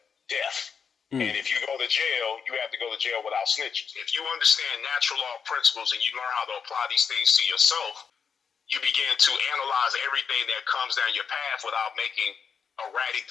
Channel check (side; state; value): right; quieter; 6.4 dB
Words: death. And if you go to jail, you have to go to jail without snitching. If you understand natural law principles and you learn how to apply these things to yourself, you begin to analyze everything that comes down your path without making erratic